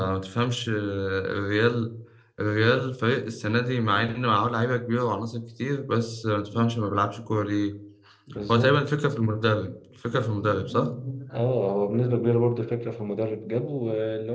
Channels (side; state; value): both; identical; correlation 1.00